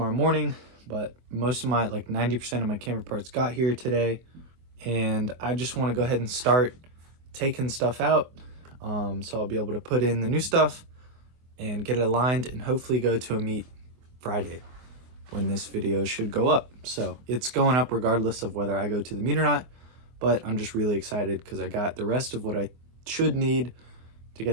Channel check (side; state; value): left; late; 24 ms